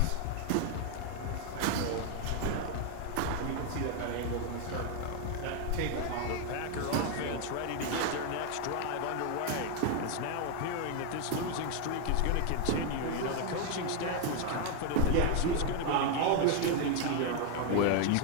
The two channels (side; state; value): both; different; correlation 0.00